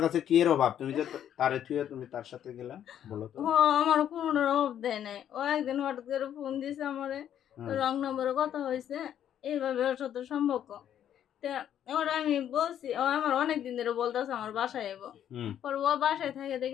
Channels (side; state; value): right; quieter; 10.1 dB